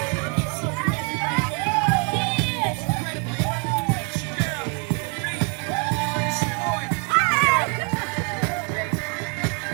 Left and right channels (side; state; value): left; quieter; 37.3 dB